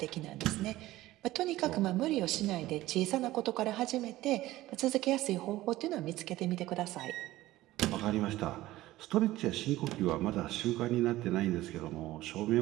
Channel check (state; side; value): quieter; left; 16.5 dB